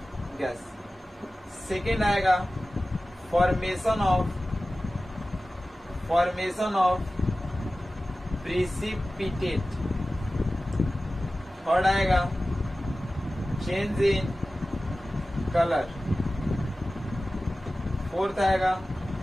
gas. सेकेंड आएगा फॉर्मेशन ऑफ प्रिसिपिटेट। थर्ड आएगा चेंज इन कलर। फोर्थ आएगा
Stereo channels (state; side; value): normal; both; correlation 0.96